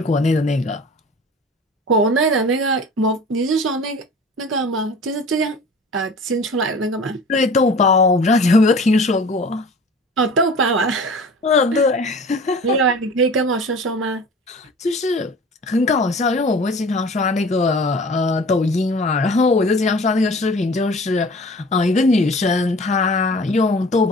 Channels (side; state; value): both; normal; correlation 0.42